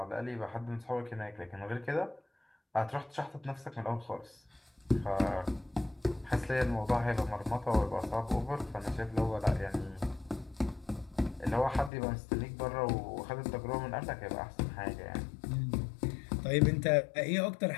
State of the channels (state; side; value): drops out; right; at 11.9 s